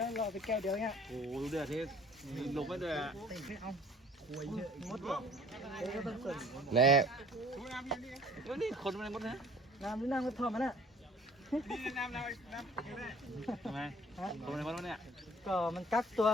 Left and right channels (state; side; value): normal; both; correlation 0.53